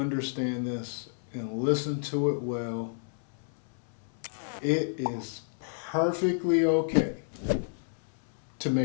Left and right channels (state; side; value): silent; right; 57 dB below the other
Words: this and listen to it well. It is perfectly okay to